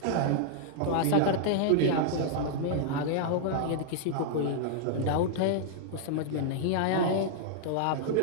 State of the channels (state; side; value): different; both; correlation -0.01